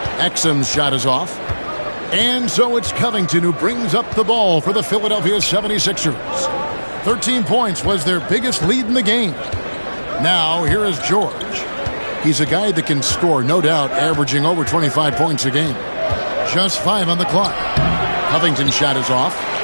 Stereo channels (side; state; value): both; inverted; correlation -1.00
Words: Exum's shot is off. And so it's Covington who brings up the ball for the Philadelphia 76ers. 13 points was their biggest lead in the game. Now, here is George. He's a guy that can score, no doubt, averaging over 25 points a game. Just 5 on the clock. Covington's shot is off.